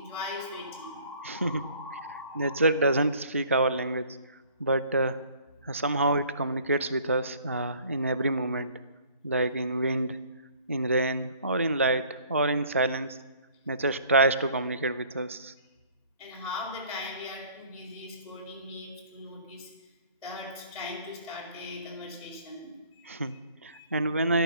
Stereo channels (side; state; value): both; inverted; correlation -0.55